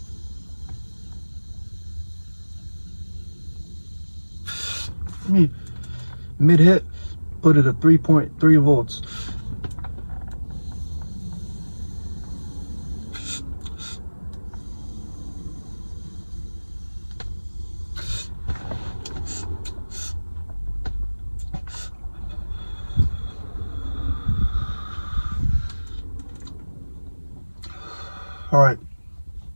Mid hit, put it at 3.3 volts. All right,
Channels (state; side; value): inverted; both; correlation -1.00